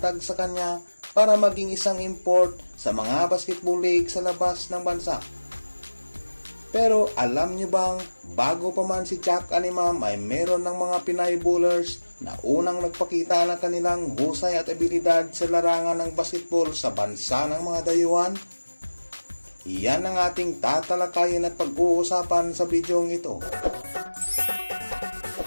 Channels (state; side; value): inverted; both; correlation -1.00